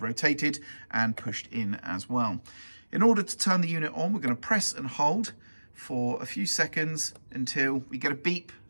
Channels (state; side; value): inverted; both; correlation -1.00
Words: and pushed in as well. In order to turn the unit on, we're going to press and hold for a few seconds until we get a beep.